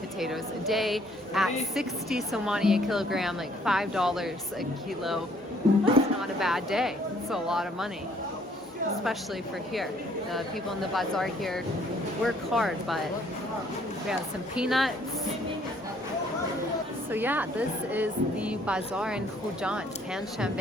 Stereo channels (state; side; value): normal; both; correlation 0.63